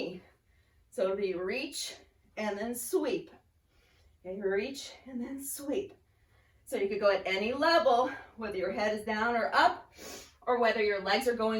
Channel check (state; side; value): identical; both; correlation 1.00